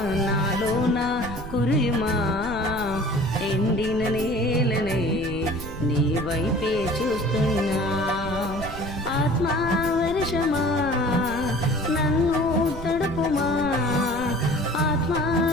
నాలోన కురియుమా, ఎండిన నేలనే నీ వైపే చూస్తున్నా. ఆత్మవర్షమా నన్ను తడుపుమా,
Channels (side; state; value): right; noise; rumble, 11 dB below the sound